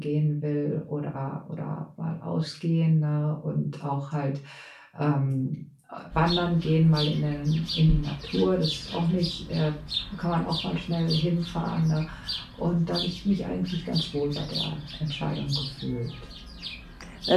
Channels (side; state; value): both; identical; correlation 1.00